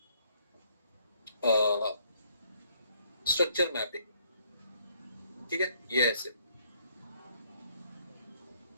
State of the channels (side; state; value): both; inverted; correlation -0.67